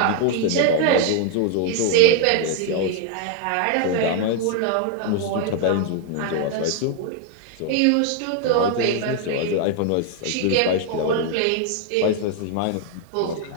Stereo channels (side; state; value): both; different; correlation 0.00